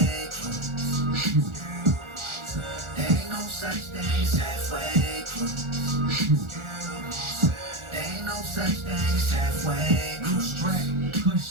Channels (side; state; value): left; late; 1.4 ms